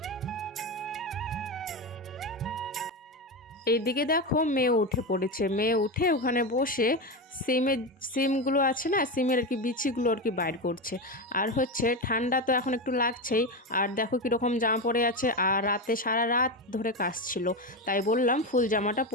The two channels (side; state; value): both; normal; correlation 0.16